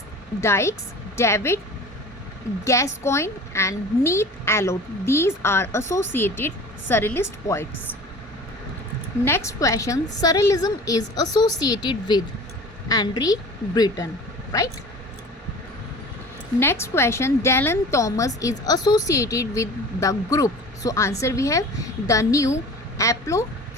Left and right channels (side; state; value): both; normal; correlation 0.40